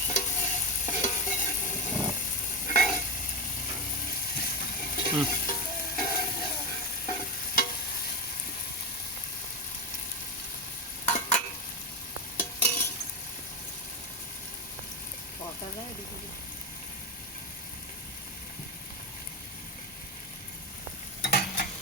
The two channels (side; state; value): both; normal; correlation 0.14